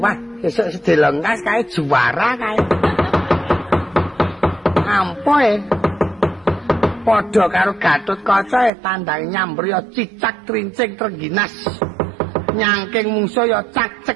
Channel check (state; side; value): drops out; left; at 8.7 s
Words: esuk sedelengkas kae juara kae. Ampoe. Padha karo Gatotkaca tandang nyambriya cicak trincing trengginas. Nyangking mungsuh ya